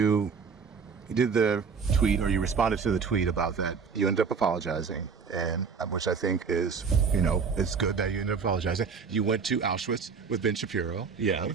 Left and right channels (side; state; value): left; quieter; 5.7 dB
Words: did the tweet, or you responded to the tweet about that, you ended up apologizing, and which I think is, it's good that you ended up apologizing. You went to Auschwitz with Ben Shapiro. Yeah.